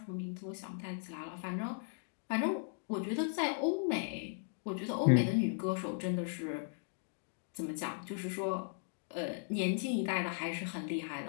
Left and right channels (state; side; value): silent; right; digital silence